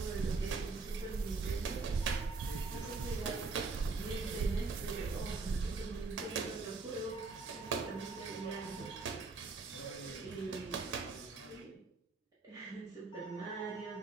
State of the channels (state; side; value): quieter; left; 4.1 dB